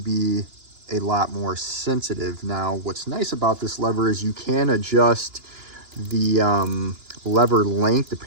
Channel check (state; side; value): late; left; 2.9 ms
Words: a lot more sensitive. Now, what's nice about this lever is you can adjust the lever length